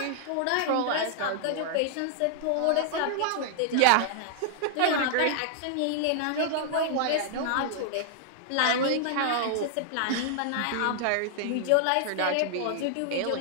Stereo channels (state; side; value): different; both; correlation -0.01